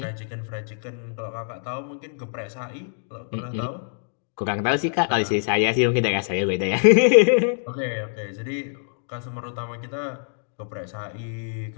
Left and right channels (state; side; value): silent; right; digital silence